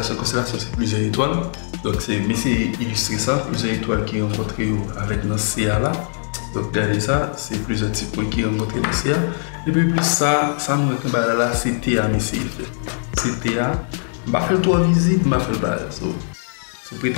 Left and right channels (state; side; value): silent; right; digital silence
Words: c'est plusieurs étoiles. Donc c'est mais c'est illustrer ça, plusieurs étoiles qui rencontrent avec notre CA là. Donc regardez ça, c'est plusieurs types qui rencontrent le CA et puis plus ça nous retombe là c'est TA mais c'est TA. Je vais faire 3 visites, je vais faire le bagage. So,